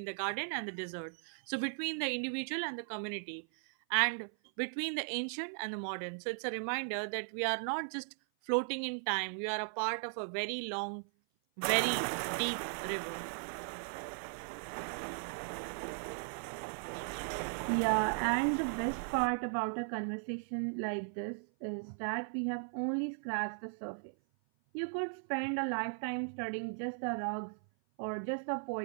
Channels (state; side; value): silent; left; 53 dB below the other